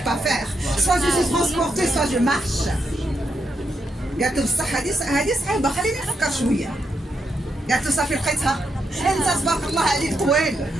pas faire. Soit je suis transporté soit je marche. قالت له بصح هذه صعيبه خليني نفكر شويه. قالت له صافي لقيتها. انت تبارك الله عليك طويل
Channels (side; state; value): both; normal; correlation 0.82